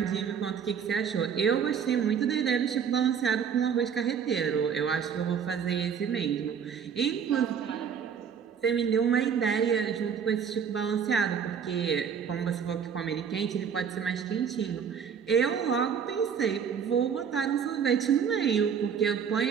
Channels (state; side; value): quieter; left; 7.3 dB